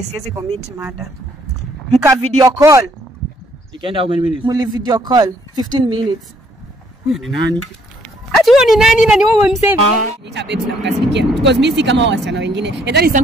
siwezi commit mada. Mka video call. Ikaenda how many minutes? Muli video call 15 minutes. Ni nani? Ati wewe ni nani na ni wewe msave? Nita babes na mkasirikia because mimi si kama wasichana wengine and that is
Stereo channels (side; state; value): both; normal; correlation 0.66